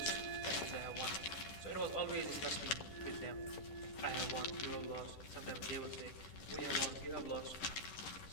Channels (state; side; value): late; right; 11 ms